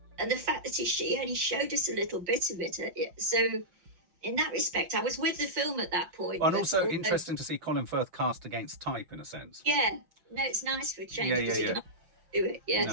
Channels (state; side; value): late; left; 5.6 ms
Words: And the fact that she only showed us a little bit of it. So in that respect, I was with the film at that point. And also interesting to see Colin Firth cast against type, in a sense. Yeah. No, it's nice for a change. Yeah. Do it.